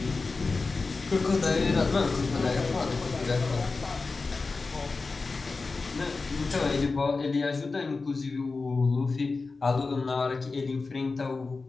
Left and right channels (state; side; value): quieter; right; 4.0 dB